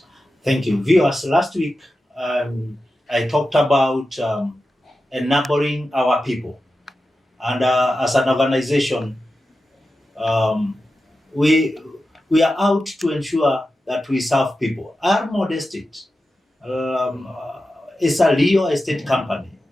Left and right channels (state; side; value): normal; both; correlation 0.92